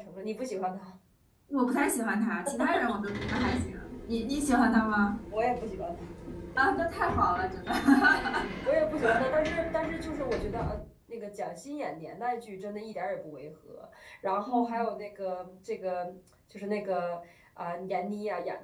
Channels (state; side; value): identical; both; correlation 1.00